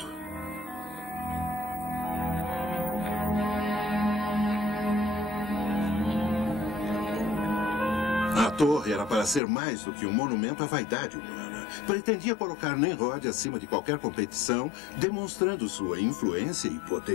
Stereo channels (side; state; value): right; drops out; at 9.4 s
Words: torre era para ser mais do que um monumento à vaidade humana. Pretendia colocar Nimrod acima de qualquer competição, demonstrando sua influência e